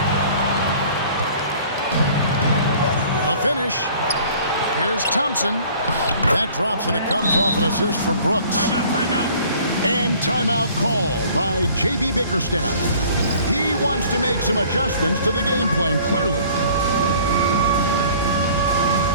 A finish. Here's Thompson. That drops, and it comes off an assist from Brooks. Timeout. And timeout called by J.B. Bickerstaff. He wants to make some adjustments to the game plan, clearly.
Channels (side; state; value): both; inverted; correlation -0.52